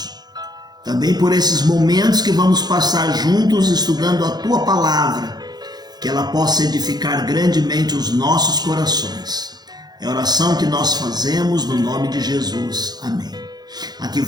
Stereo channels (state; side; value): late; left; 0.20 ms